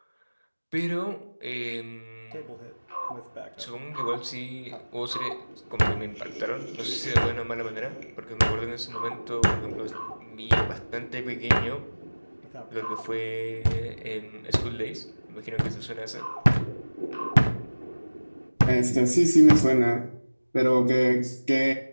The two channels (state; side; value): inverted; both; correlation -1.00